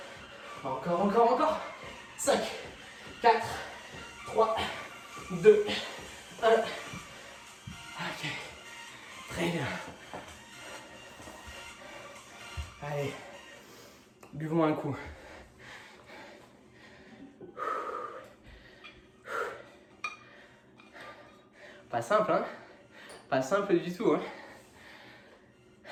Encore. 5, 4, 3, 2, 1. Ok. Très bien. Allez. Buvons un coup. Pas simple, hein? Pas simple du tout, hein?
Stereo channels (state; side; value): identical; both; correlation 1.00